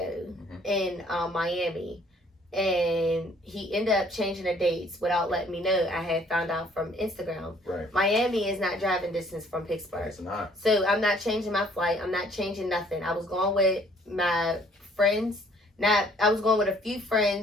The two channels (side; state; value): both; normal; correlation 0.60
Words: in Miami, and he ended up changing the dates without letting me know. I had found out from Instagram. Right. Miami is not driving distance from Pittsburgh. It's not. So I'm not changing my flight. I'm not changing nothing. I was going with my friends. I was going with a few